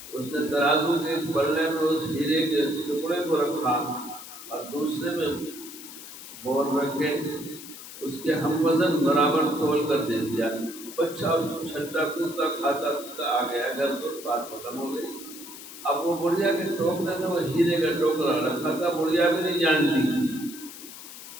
اس نے ترازو کے پلے میں اس ہیرے کے ٹکڑے کو رکھا اور دوسرے میں بال رکھے، اس کے ہم وزن برابر تول کر دے دیا۔ بچہ چھلتا کودتا کھاتا پیتا آ گیا گھر پر، بات ختم ہو گئی۔ اب وہ بڑھیا کے ٹوکرے میں وہ ہیرے کا ٹوکرا رکھا تھا، بڑھیا بھی نہیں جانتی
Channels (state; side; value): noise; left; hiss, 14 dB below the sound